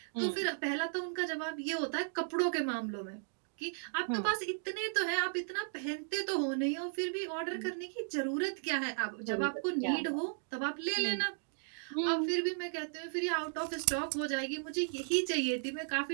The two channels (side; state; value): left; silent; digital silence